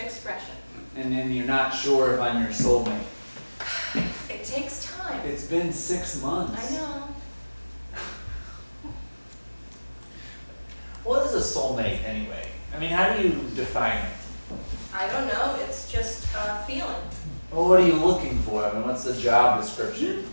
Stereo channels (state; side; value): inverted; both; correlation -1.00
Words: expression. And then you're not sure if I'm your soulmate. It takes time. It's been 6 months. I know. What is a soulmate anyway? I mean, how do you define it? I don't know. It's just a feeling. Well, what are you looking for? I mean, what's the job description?